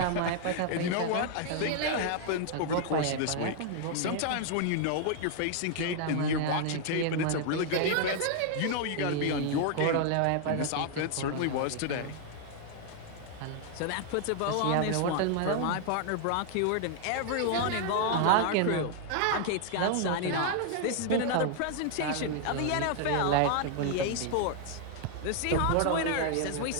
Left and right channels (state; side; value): different; both; correlation 0.00